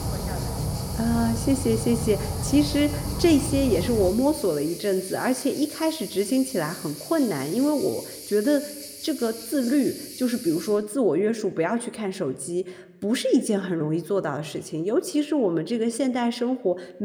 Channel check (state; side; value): identical; both; correlation 1.00